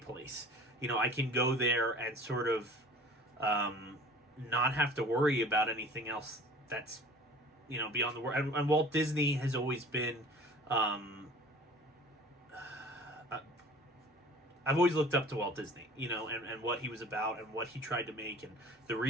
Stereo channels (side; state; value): both; normal; correlation 0.45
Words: I can go there and sort of not have to worry about anything else that's, beyond the world. And Walt Disney has always been I've always looked up to Walt Disney, you know, and what he was about and what he tried to make and the